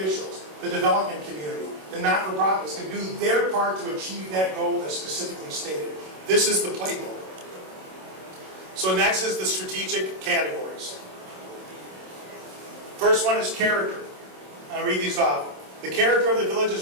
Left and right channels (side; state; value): left; late; 27 ms